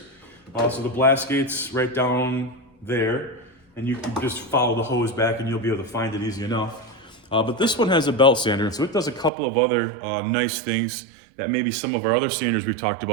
So the blast gate's right down there, and you can just follow the hose back and you'll be able to find it easy enough. But this one has a belt sander, and so it does a couple of other nice things that maybe some of our other sanders we've talked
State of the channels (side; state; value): left; drops out; at 9.3 s